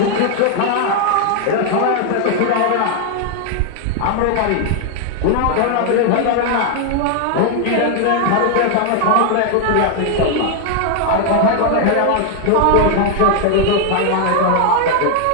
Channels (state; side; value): different; both; correlation 0.00